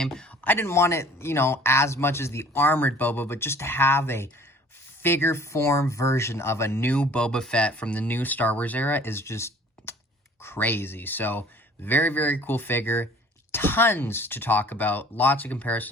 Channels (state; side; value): normal; both; correlation 0.51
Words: I didn't want it, as much as the armored Boba, but just to have a figure form version of a new Boba Fett from the new Star Wars era is just crazy. So very cool figure. Tons to talk about. Lots of